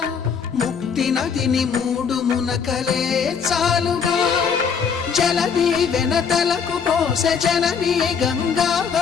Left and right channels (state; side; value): quieter; right; 6.4 dB